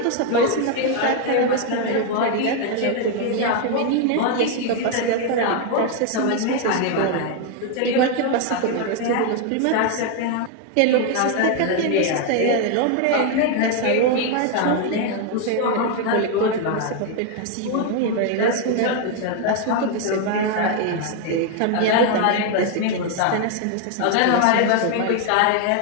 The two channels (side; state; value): both; different; correlation 0.01